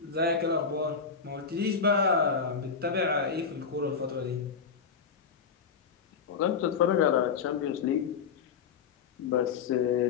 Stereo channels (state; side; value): quieter; right; 5.9 dB